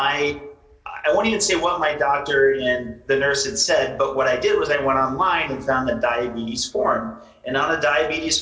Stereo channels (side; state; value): both; identical; correlation 1.00